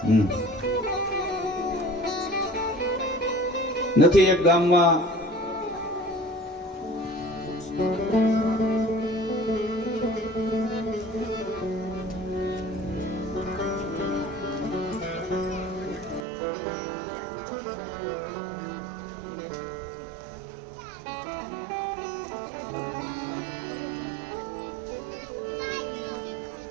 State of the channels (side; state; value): left; drops out; at 16.2 s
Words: નથી એક ગામમાં